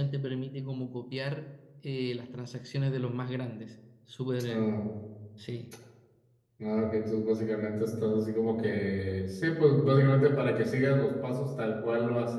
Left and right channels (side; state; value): both; identical; correlation 1.00